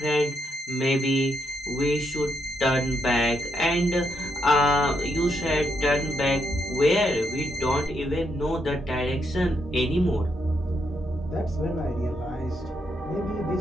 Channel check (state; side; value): normal; both; correlation 0.79